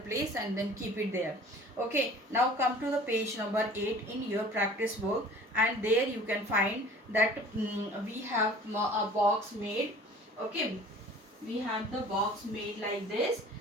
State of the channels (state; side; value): normal; both; correlation 0.46